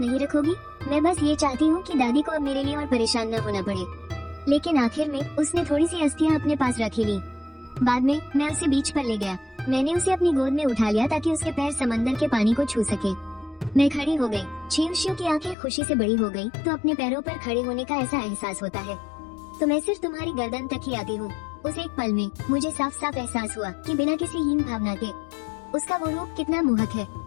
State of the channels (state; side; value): drops out; right; at 15.6 s